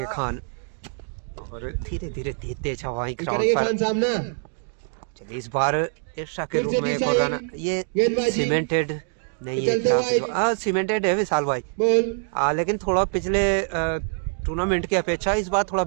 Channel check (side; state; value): left; silent; 62 dB below the other